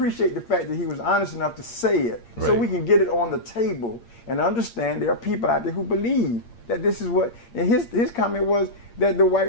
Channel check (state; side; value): late; right; 8.6 ms